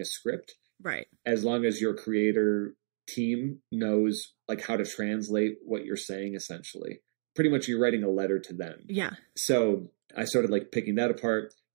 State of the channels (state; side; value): silent; left; digital silence